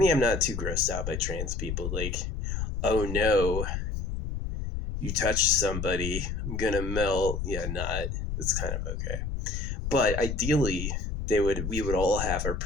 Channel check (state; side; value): noise; left; rumble, 3 dB below the sound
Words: I'm not too grossed out by trans people. Like, oh no, you touched somebody, I'm gonna melt. Yeah, not. It's kind of okay. But ideally, we would all have our